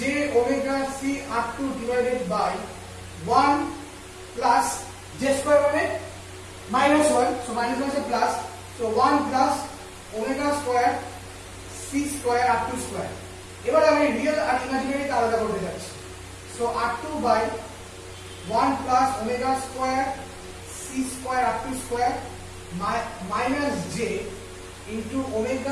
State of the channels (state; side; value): identical; both; correlation 1.00